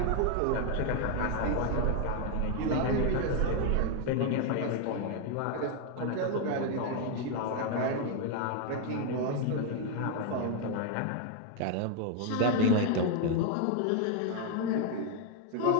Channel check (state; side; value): different; both; correlation 0.00